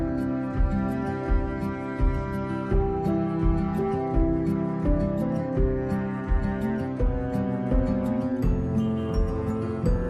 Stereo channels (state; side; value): identical; both; correlation 1.00